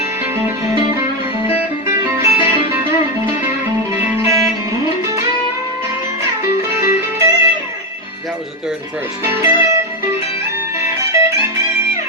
That was the third and first.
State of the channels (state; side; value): normal; both; correlation 0.09